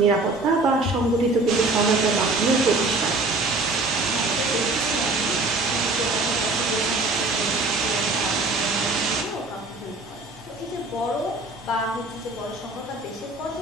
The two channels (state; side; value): quieter; left; 3.1 dB